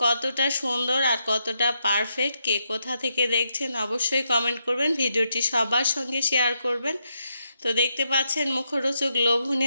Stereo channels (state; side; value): inverted; both; correlation -0.81